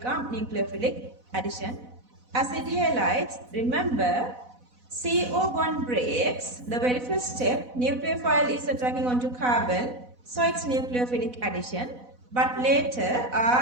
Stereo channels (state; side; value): late; left; 4.0 ms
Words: nucleophilic addition. Acid halides, remember CO bond breaks, the very first step, nucleophile is attacking onto carbon. So it's nucleophilic addition. But later